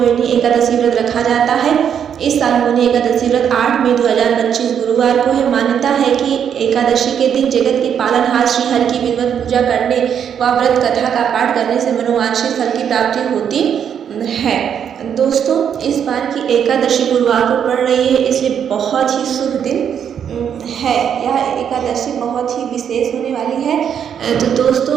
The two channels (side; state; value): left; quieter; 8.3 dB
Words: एकादशी व्रत रखा जाता है। इस साल मोहिनी एकादशी व्रत 8 मई 2025 गुरुवार को है। मान्यता है कि एकादशी के दिन जगत के पालनहार श्री हरि की विधिवत पूजा करने व व्रत कथा का पाठ करने से मनोवांछित फल की प्राप्ति होती है। दोस्तों, इस बार की एकादशी गुरुवार को पड़ रही है, इसलिए बहुत ही शुभ दिन है। यह एकादशी बहुत ही विशेष होने वाली है। तो दोस्तों,